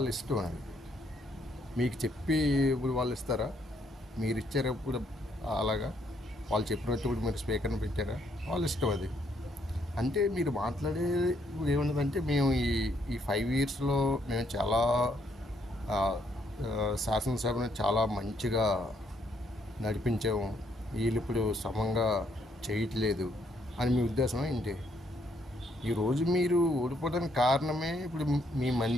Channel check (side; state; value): both; normal; correlation 0.71